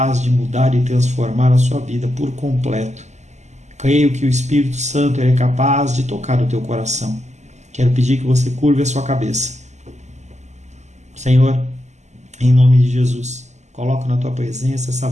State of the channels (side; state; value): left; late; 0.33 ms